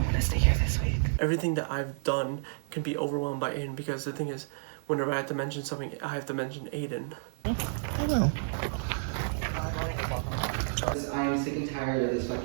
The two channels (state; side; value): silent; left; digital silence